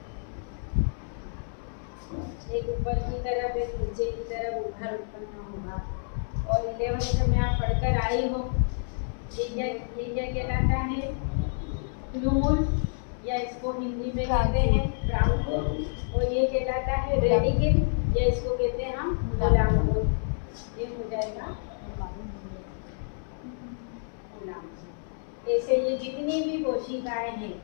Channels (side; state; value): right; silent; 57 dB below the other